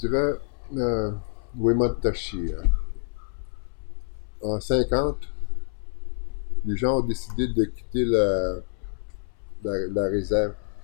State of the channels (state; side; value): silent; right; 60 dB below the other